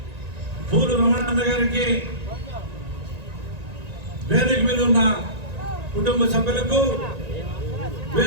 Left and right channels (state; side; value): late; left; 1.9 ms